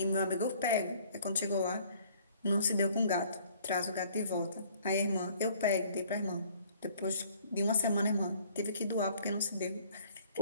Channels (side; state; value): both; inverted; correlation -0.58